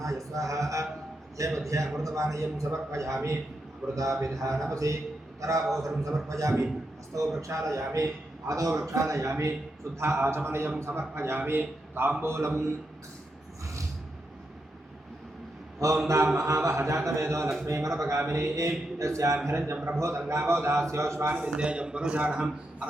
స్వాహ. మధ్య మధ్య అమృతపానీయం సమర్పయామి. అమృతాభిధానమసి ఉత్తరాభోసరం సమర్పయామి. హస్తౌ ప్రక్షాళయామి, పాదౌ ప్రక్షాళయామి. శుద్ధ ఆచమనయం సమర్పయామి. తాంబూలం. ఓం దాం మహావహ జాతవేదో లక్ష్మీమనపగామినీ యస్యాం హిరణ్యం ప్రభోదంగావో దాస్యోశ్వాన్ విందేయం పురుషార్హం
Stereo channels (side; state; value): both; normal; correlation 0.84